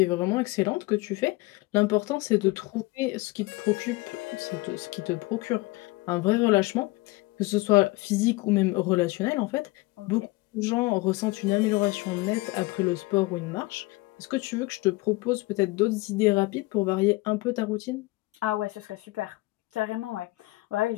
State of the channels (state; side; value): quieter; right; 22.2 dB